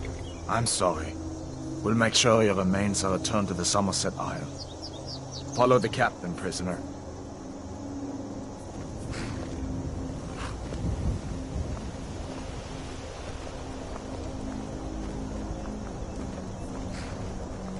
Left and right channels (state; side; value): identical; both; correlation 1.00